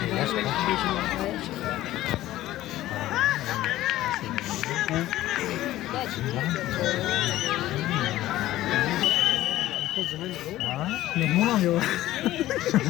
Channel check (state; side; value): quieter; right; 15.1 dB